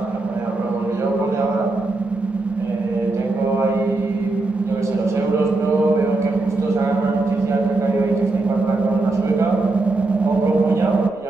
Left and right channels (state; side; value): quieter; left; 3.2 dB